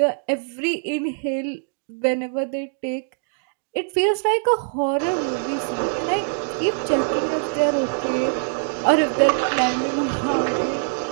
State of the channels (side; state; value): left; silent; digital silence